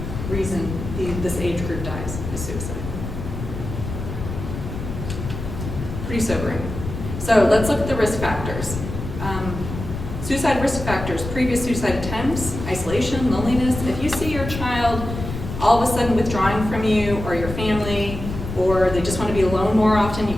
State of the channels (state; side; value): noise; left; rumble, 7 dB below the sound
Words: reason this age group dies is suicide. Pretty sobering. So let's look at the risk factors. Suicide risk factors: previous suicide attempts, isolation, loneliness. If you see your child all of a sudden withdrawing from you or your family, or they just want to be alone more often, you